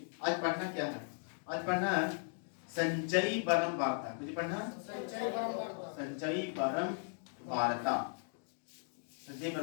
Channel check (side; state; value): right; silent; 53 dB below the other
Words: आज पढ़ना क्या है, आज पढ़ना है संचयी परम वार्ता। मुझे पढ़ना संचयी परम वार्ता, संचयी